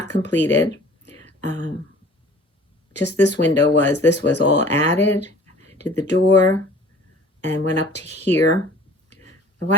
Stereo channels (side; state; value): both; normal; correlation 0.49